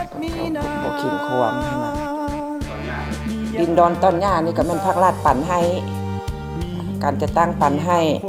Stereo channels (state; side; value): identical; both; correlation 1.00